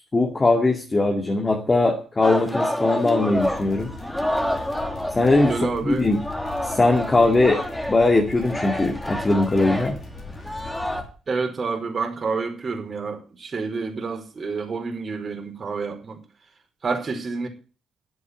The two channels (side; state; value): both; normal; correlation 0.89